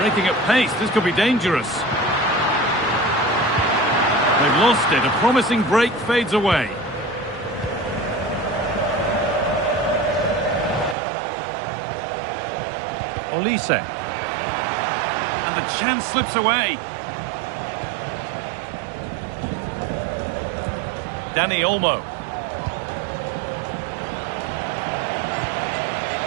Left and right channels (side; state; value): left; drops out; at 11.0 s